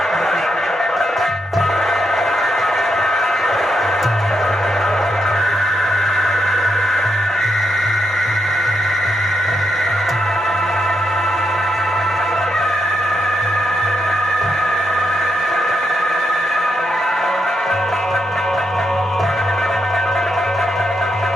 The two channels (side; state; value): both; normal; correlation 0.81